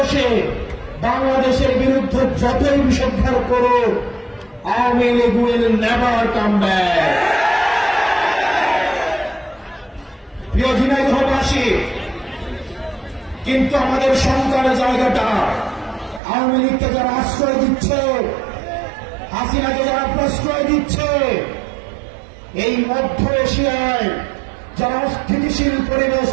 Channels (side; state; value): left; drops out; at 16.2 s